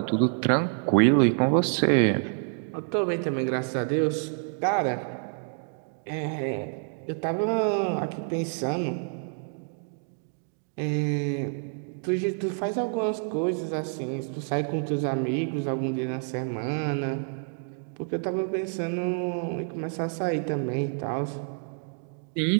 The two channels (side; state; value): left; silent; 59 dB below the other